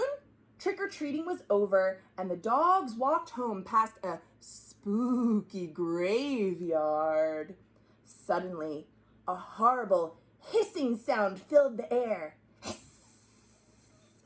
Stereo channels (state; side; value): identical; both; correlation 1.00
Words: trick-or-treating was over, and the dogs walked home past a spooky graveyard. Suddenly, a horrible hissing sound filled the air.